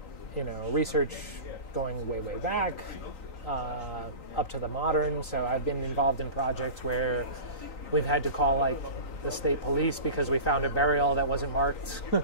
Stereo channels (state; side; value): late; right; 3.9 ms